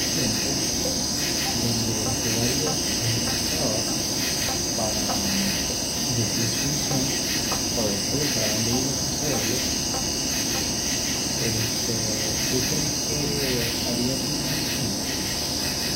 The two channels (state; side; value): identical; both; correlation 1.00